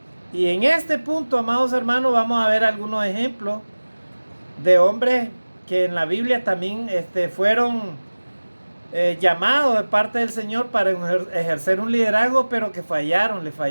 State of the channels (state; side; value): inverted; both; correlation -1.00